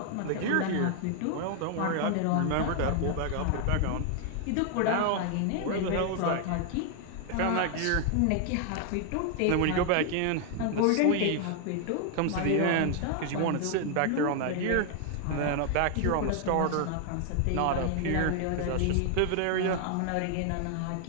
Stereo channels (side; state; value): both; different; correlation 0.00